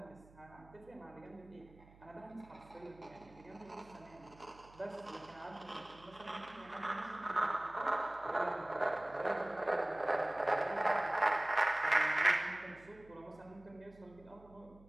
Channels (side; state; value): right; noise; hum, 24 dB below the sound